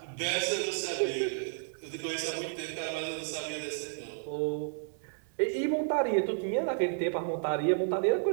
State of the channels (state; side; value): silent; left; 56 dB below the other